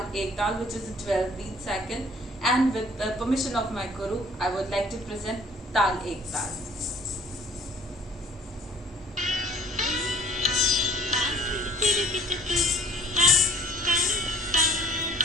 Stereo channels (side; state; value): both; normal; correlation 0.54